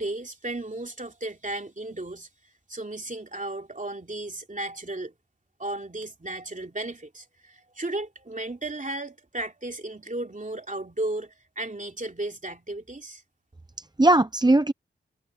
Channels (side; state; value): both; normal; correlation 0.63